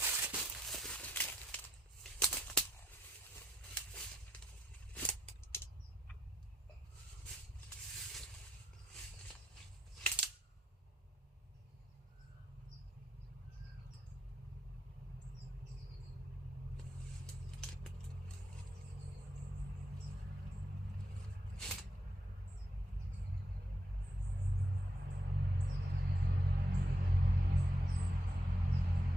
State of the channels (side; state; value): both; normal; correlation 0.80